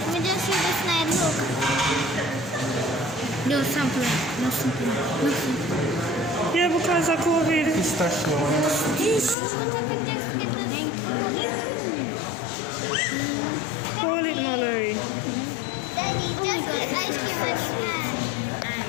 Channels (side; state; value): right; drops out; at 9.3 s